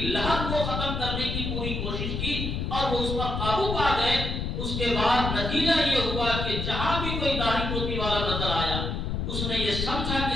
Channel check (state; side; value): noise; left; rumble, 2 dB below the sound